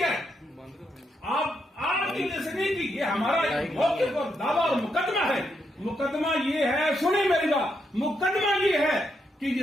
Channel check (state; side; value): normal; both; correlation 0.80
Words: ہے, آپ کی وجہ سے نہیں کی. یہ ہمارا موقف اور دعویٰ اور مقدمہ ہے. مقدمہ یہ ہے, سنیں میری بات, مقدمہ یہ ہے کہ